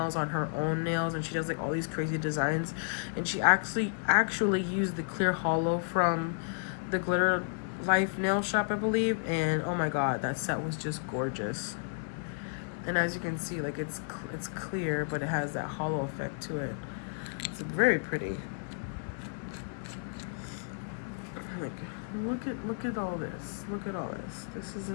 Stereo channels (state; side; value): silent; right; digital silence